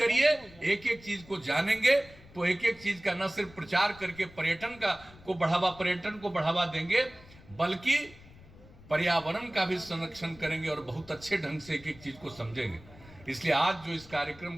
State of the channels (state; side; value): noise; left; rumble, 22 dB below the sound